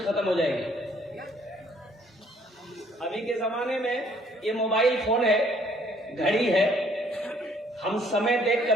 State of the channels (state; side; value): normal; both; correlation 0.62